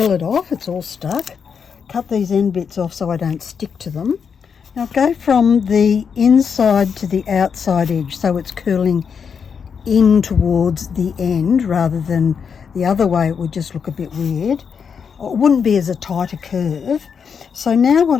it off, it's all stuck. Cut these end bits off so I don't stick to them. Now go from the inside to the outside edge so it's curling in towards the end rather than the other way. It would just look a bit weird. It wouldn't be as a tighter curve. So now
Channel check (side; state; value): right; quieter; 6.6 dB